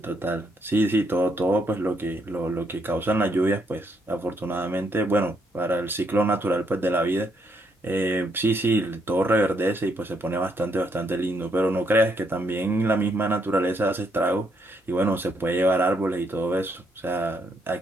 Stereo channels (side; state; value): both; normal; correlation 0.74